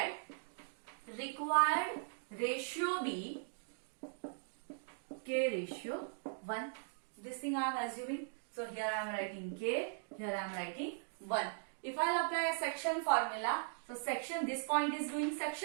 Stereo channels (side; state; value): left; silent; digital silence